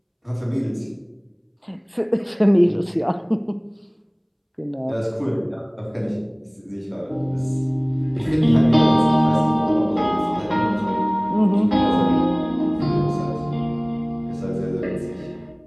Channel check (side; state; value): both; identical; correlation 1.00